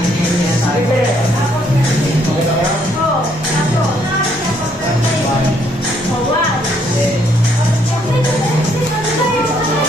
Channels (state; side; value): normal; both; correlation 0.69